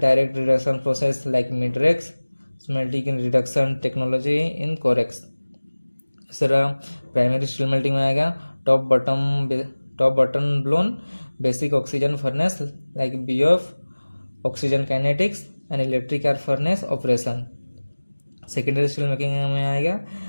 reduction process like Midrex, smelting in reduction technology in Corex. इस तरह primary steel melting में आएगा top bottom blown basic oxygen furnace like BOF, oxygen kinetics and electric arc furnace operation. Secondary steel making में आएगा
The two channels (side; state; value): both; inverted; correlation -1.00